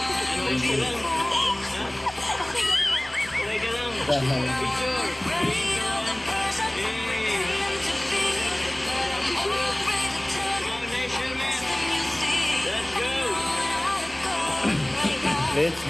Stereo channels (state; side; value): noise; left; rumble, 29 dB below the sound